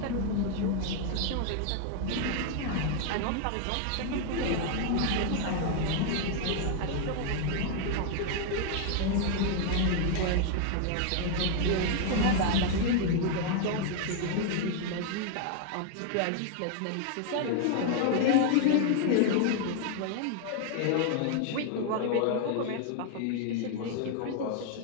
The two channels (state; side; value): different; both; correlation 0.00